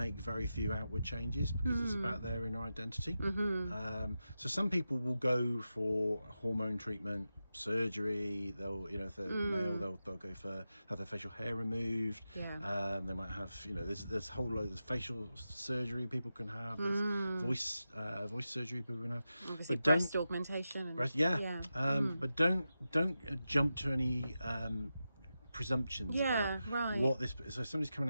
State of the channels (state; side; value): inverted; both; correlation -0.91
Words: very few outward changes because it's about their inner identity. So some people will go for hormone treatment, surgery. They'll, if they're male, they'll go for have their facial hair removed. They might have, there's a whole load of facial surgery people can have. There's voice surgery people can have. Obviously, but breast augmentation. But don't jump to any presumptions Yeah, about right. what this. So if somebody's